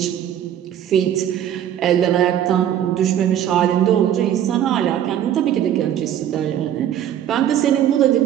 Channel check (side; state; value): left; quieter; 10.6 dB